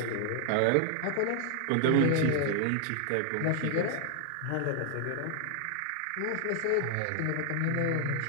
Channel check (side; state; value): both; different; correlation 0.00